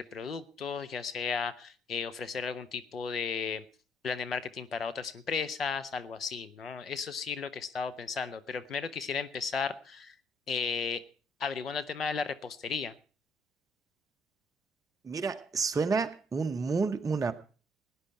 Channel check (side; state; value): both; normal; correlation 0.67